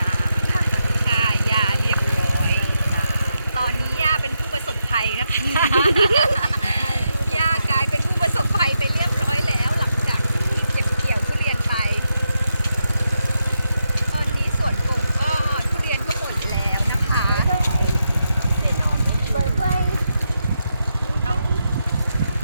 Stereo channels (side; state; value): both; inverted; correlation -0.85